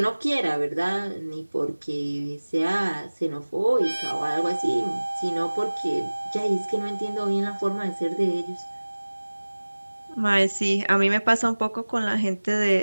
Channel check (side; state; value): both; inverted; correlation -1.00